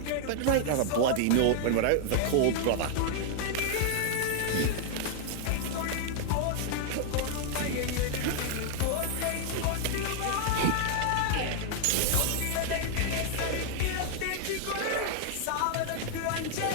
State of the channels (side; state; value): both; different; correlation 0.00